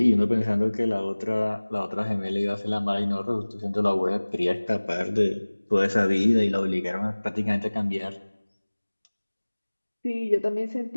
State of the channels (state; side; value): inverted; both; correlation -1.00